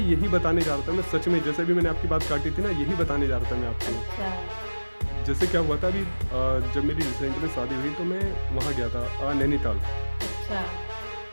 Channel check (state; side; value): inverted; both; correlation -1.00